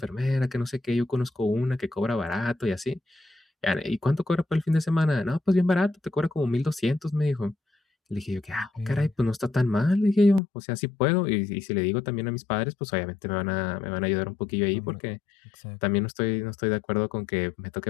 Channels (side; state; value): right; drops out; at 10.4 s